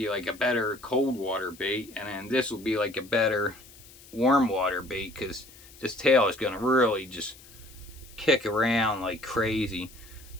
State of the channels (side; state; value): left; noise; hiss, 22 dB below the sound